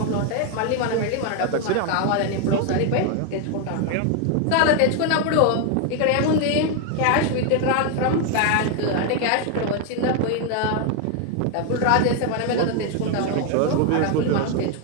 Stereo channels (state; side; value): different; both; correlation 0.01